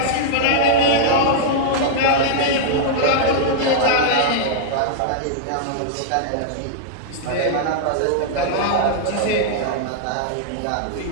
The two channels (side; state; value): both; different; correlation -0.01